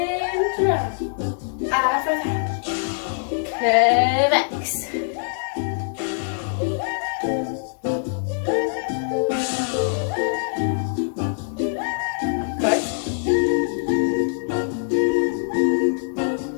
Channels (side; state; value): right; silent; 63 dB below the other